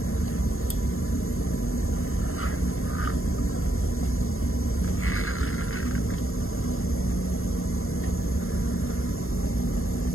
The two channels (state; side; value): late; right; 0.61 ms